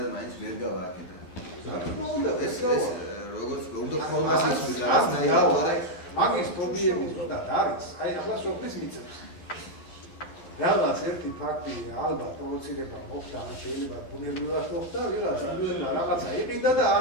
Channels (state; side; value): late; right; 12 ms